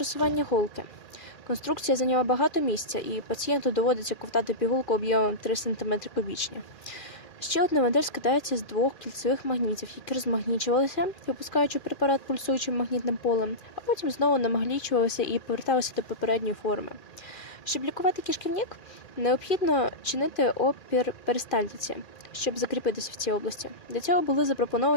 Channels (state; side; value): late; right; 2.4 ms